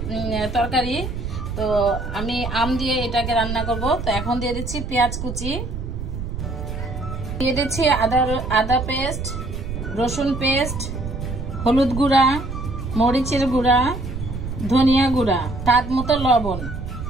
তরকারি। তো আমি আম দিয়ে এটাকে রান্না করব। তো এখন দিয়ে দিচ্ছি পেঁয়াজ কুচি, দিয়ে দিচ্ছি আদা পেস্ট, রসুন পেস্ট, হলুদ গুঁড়া, মরিচের গুঁড়া, ধনিয়া গুঁড়া, স্বাদ মতো লবণ,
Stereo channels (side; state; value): right; noise; rumble, 6 dB below the sound